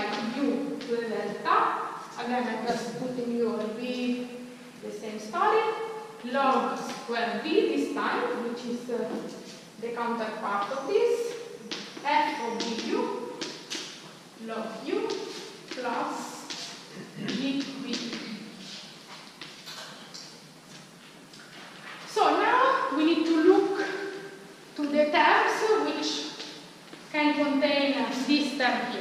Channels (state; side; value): identical; both; correlation 1.00